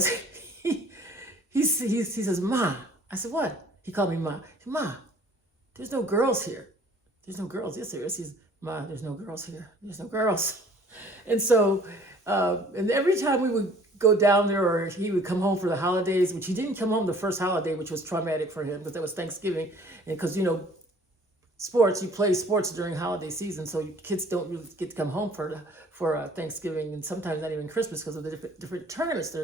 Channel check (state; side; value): normal; both; correlation 0.53